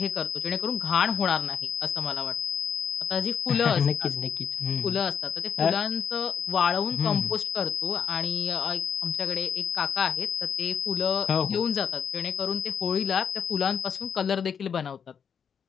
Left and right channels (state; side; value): quieter; right; 7.2 dB